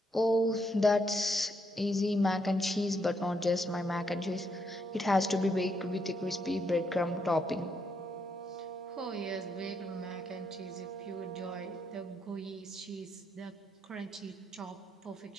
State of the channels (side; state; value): both; normal; correlation 0.77